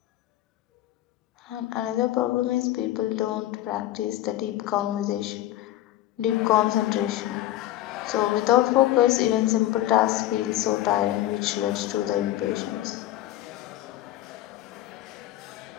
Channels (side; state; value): right; quieter; 14.6 dB